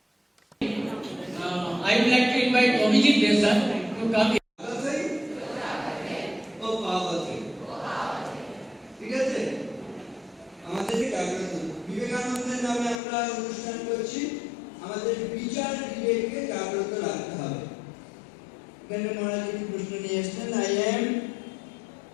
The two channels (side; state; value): right; drops out; at 13.0 s